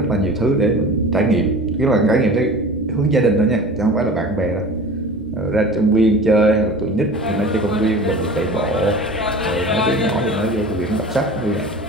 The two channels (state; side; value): normal; both; correlation 0.38